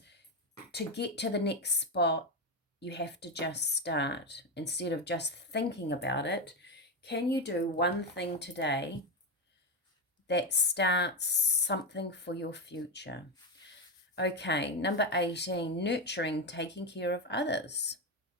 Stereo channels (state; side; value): normal; both; correlation 0.09